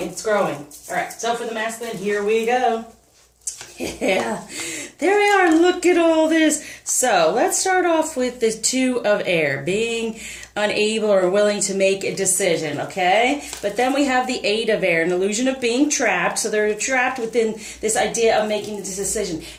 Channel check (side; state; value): both; identical; correlation 1.00